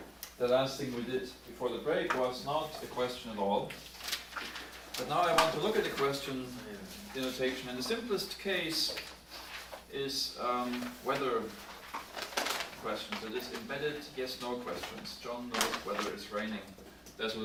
the last thing we did before the break was not a question at all, but now I want to look at the question denotation, and the simplest case is whether questions. So this embedded yes/no questions. John knows whether it's raining, that sort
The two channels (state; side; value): identical; both; correlation 1.00